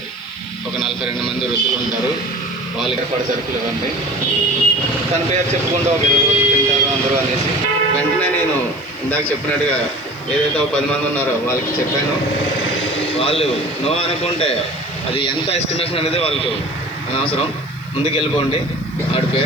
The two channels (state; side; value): noise; right; hiss, 29 dB below the sound